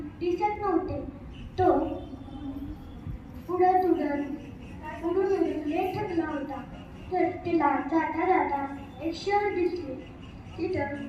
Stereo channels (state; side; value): identical; both; correlation 1.00